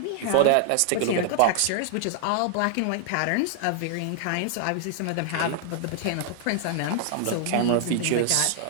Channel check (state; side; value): different; both; correlation 0.00